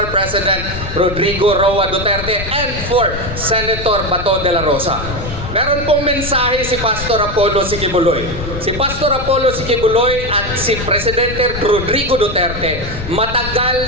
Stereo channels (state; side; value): noise; left; rumble, 8 dB below the sound